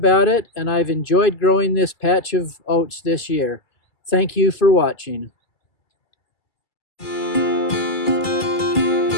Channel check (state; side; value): late; right; 2.3 ms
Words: it, and I've enjoyed growing this patch of oats this year. Thank you for watching.